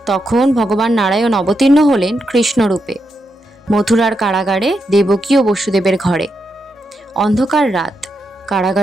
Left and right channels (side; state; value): both; normal; correlation 0.84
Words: তখন ভগবান নারায়ণ অবতীর্ণ হলেন কৃষ্ণরূপে মথুরার কারাগারে দেবকী ও বসুদেবের ঘরে। অন্ধকার রাত,